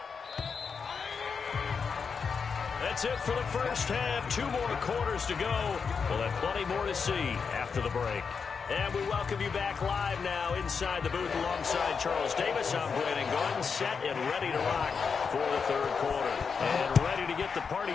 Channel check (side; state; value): right; quieter; 5.7 dB